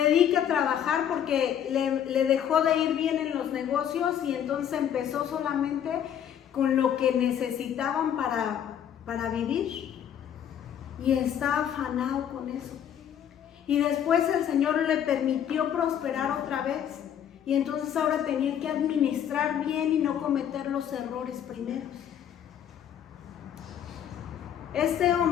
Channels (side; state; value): right; quieter; 9.5 dB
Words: a trabajar porque le dejó de ir bien en los negocios, y entonces empezó solamente con lo que necesitaban para vivir. Y está afanado con eso. Y después el Señor le permitió prosperar otra vez. Y entonces ahora tenía que administrar bien y no cometer los errores primeros. Este